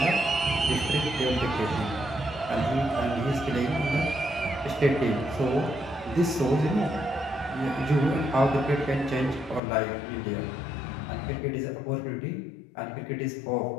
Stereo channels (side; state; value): right; drops out; at 9.6 s